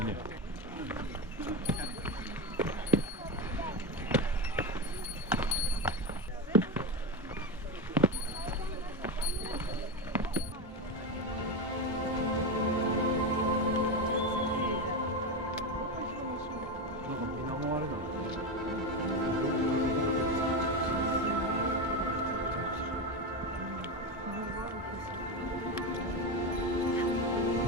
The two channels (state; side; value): normal; both; correlation 0.15